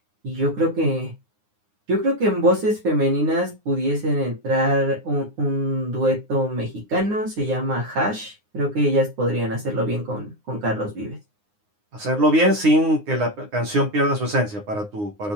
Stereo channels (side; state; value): left; late; 9.7 ms